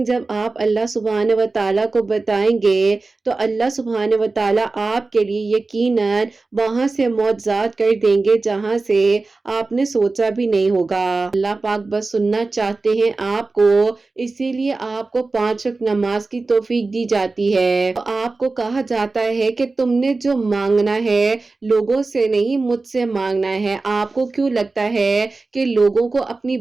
جب آپ اللہ سبحانہ و تعالیٰ کو بتائیں گے تو اللہ سبحانہ و تعالیٰ آپ کے لیے یقیناً وہاں سے معجزات کر دیں گے جہاں سے آپ نے سوچا بھی نہیں ہوگا۔ اللہ پاک بس سننا چاہتے ہیں آپ کو، اسی لیے آپ کو 5 وقت نماز کی توفیق دی جاتی ہے۔ آپ کو کہا جاتا ہے کہ تم نے جو مانگنا ہے لوگوں سے نہیں مجھ سے مانگنا ہے۔ آپ کو کیوں لگتا ہے کہ لوگوں کو اپنی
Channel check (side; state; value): left; quieter; 3.6 dB